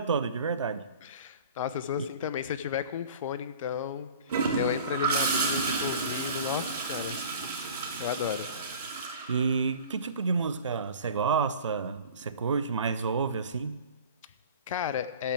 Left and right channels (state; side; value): inverted; both; correlation -0.42